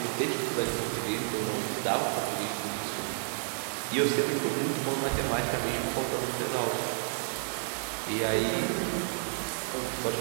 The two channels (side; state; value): left; silent; digital silence